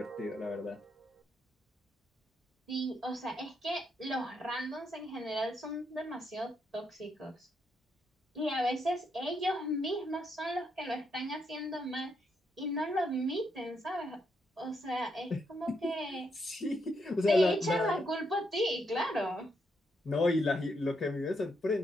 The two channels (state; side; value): normal; both; correlation 0.78